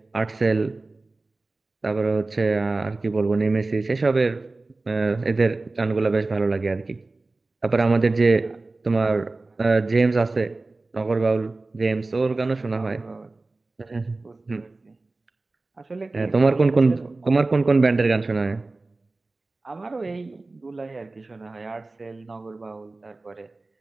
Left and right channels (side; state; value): left; quieter; 3.3 dB